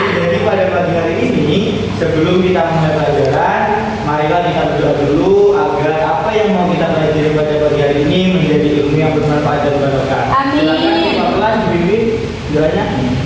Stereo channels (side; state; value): both; identical; correlation 1.00